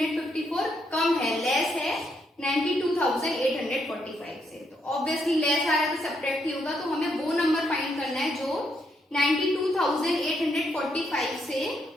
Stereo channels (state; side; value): normal; both; correlation 0.77